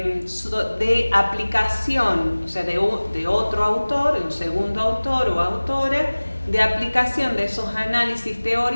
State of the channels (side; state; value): both; inverted; correlation -1.00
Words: aplicación, o sea, de otro autor, un segundo autor o autora, de aplicación de esos análisis